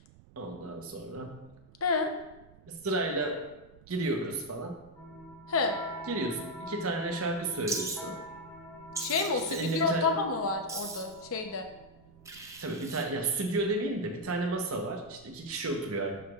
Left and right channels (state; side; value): noise; right; rumble, 23 dB below the sound